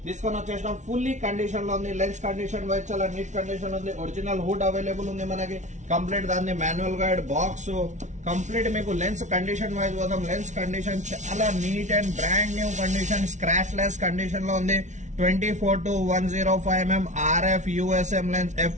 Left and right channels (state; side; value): late; left; 0.35 ms